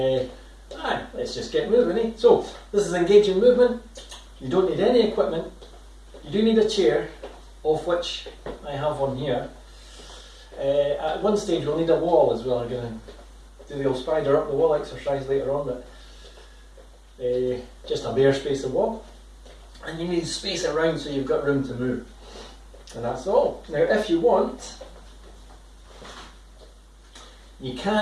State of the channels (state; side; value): identical; both; correlation 1.00